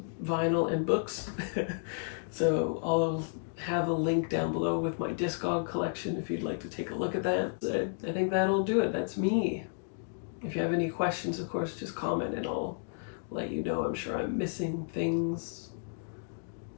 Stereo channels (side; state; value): right; silent; digital silence